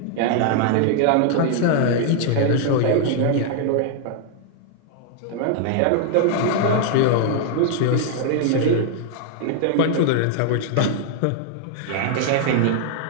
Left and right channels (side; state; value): both; different; correlation 0.00